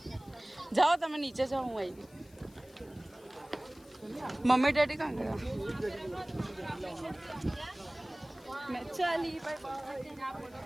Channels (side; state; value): left; noise; hiss, 27 dB below the sound